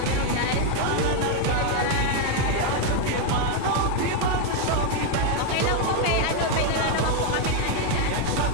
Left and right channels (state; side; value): different; both; correlation 0.01